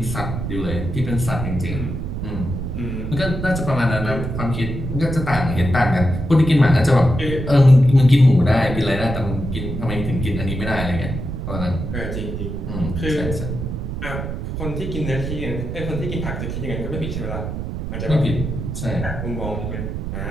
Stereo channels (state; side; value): noise; right; rumble, 5 dB below the sound